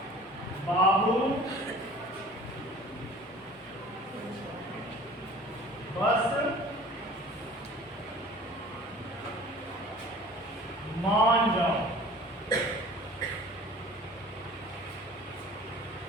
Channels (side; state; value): both; normal; correlation 0.45